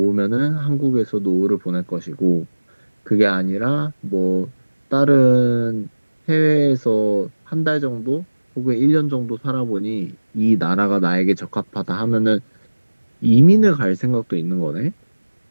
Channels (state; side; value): inverted; both; correlation -1.00